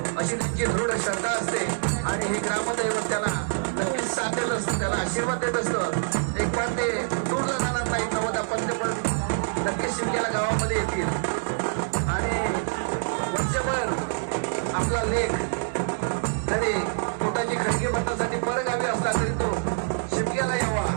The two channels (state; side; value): silent; left; digital silence